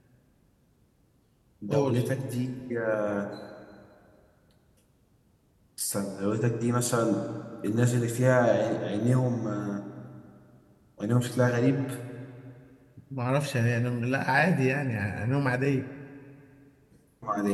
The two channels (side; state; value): both; identical; correlation 1.00